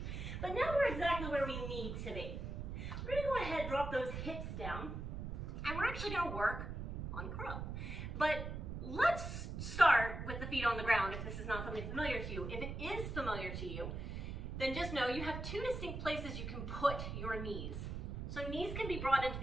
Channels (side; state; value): right; noise; rumble, 5 dB below the sound